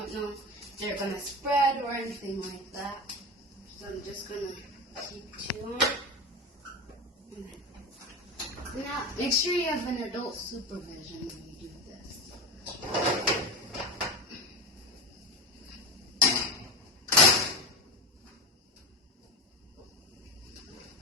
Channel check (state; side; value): normal; both; correlation 0.22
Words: know if they're going to spread or anything like that. So I'm just going to keep 2 on. Now, make sure you have an adult supervision when you do this.